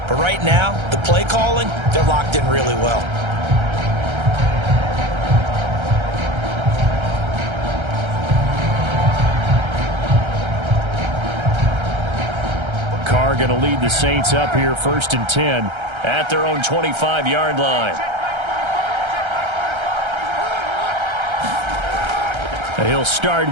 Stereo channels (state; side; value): late; left; 1.3 ms